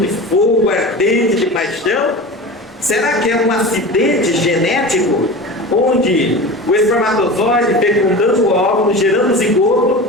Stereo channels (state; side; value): normal; both; correlation 0.32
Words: fogo ardente de paixão? Será que é um acidente genético onde o espermatozoide fecundando o óvulo, gerando zigoto,